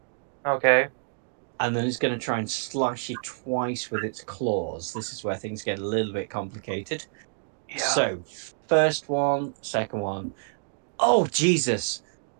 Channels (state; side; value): silent; left; digital silence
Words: Okay. And then it's going to try and slash you twice with its claws. This is where things get a little bit complicated. Yeah. So, first one, second one. Oh, Jesus.